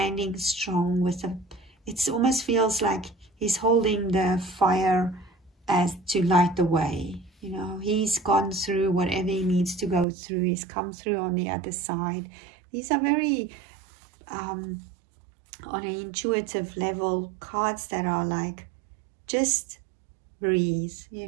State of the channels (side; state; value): left; drops out; at 10.1 s